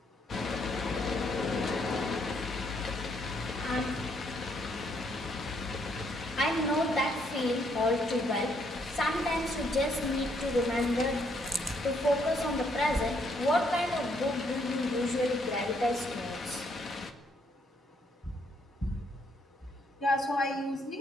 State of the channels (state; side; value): normal; both; correlation 0.71